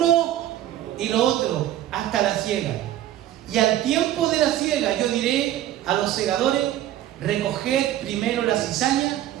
y lo otro hasta la siega. Y al tiempo de la siega yo diré a los segadores: recoged primero la cizaña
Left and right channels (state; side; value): quieter; left; 12.9 dB